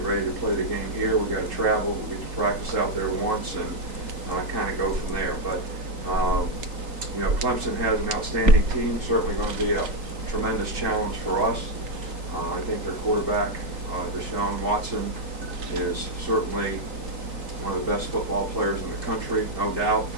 ready to play the game here. We've got to travel. We get to practice out there once and kind of go from there. But, Clemson has an outstanding team, certainly going to be a tremendous challenge for us. I think their quarterback, Deshaun Watson, is certainly one of the best football players in the country, no doubt,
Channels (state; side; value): late; left; 3.6 ms